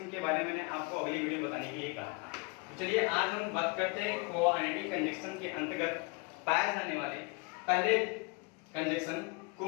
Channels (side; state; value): right; quieter; 29.6 dB